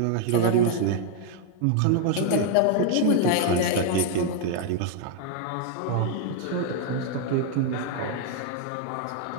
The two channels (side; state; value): both; different; correlation 0.00